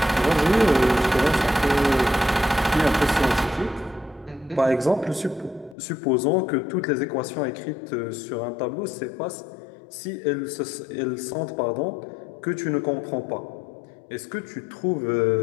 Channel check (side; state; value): right; drops out; at 5.8 s